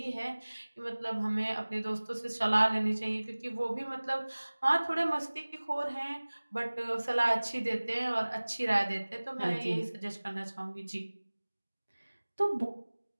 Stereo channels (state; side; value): inverted; both; correlation -1.00